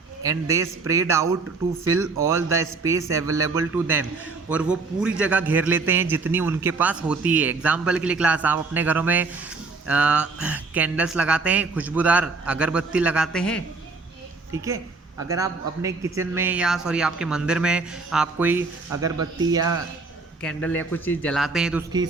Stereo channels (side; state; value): left; quieter; 4.0 dB